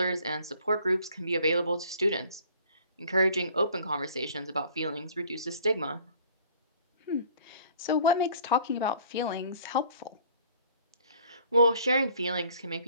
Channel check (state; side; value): inverted; both; correlation -0.54